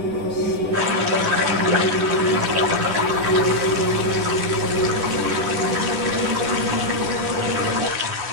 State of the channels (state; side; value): late; left; 10 ms